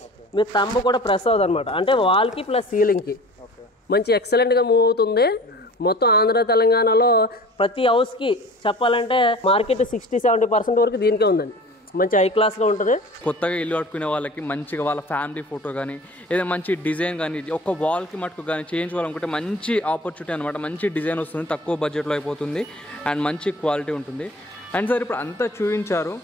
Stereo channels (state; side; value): normal; both; correlation 0.42